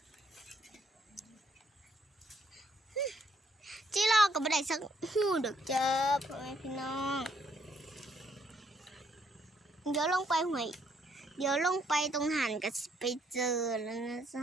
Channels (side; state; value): both; normal; correlation 0.70